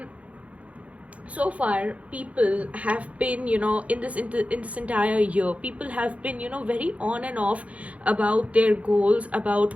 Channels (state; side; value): late; left; 0.065 ms